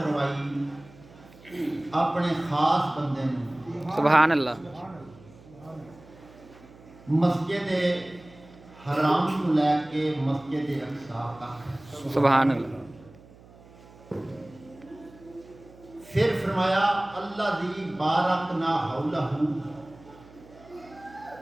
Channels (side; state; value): right; noise; hum, 23 dB below the sound